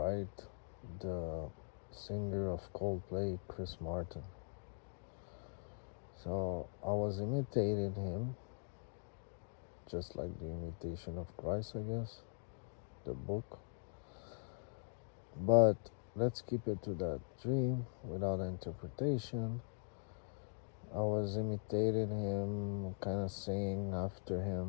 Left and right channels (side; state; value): right; silent; digital silence